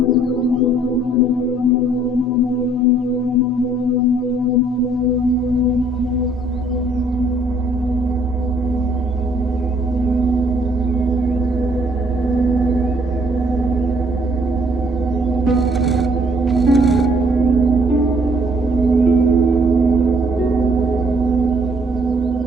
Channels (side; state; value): both; normal; correlation 0.63